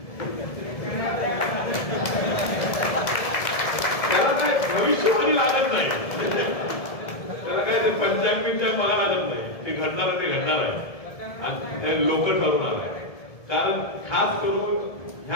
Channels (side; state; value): right; late; 1.7 ms